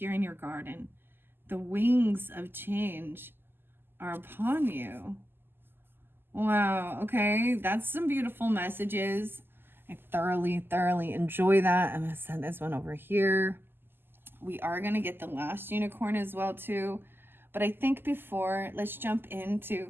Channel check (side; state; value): left; late; 0.10 ms